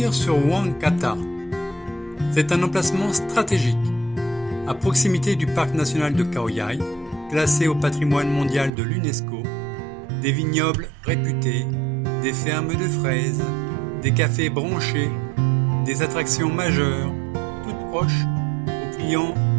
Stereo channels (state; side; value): drops out; left; at 8.7 s